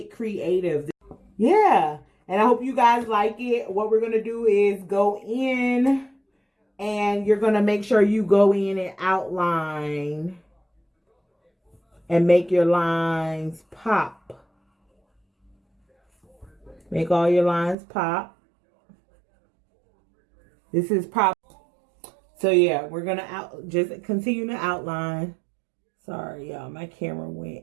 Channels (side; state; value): left; drops out; at 17.8 s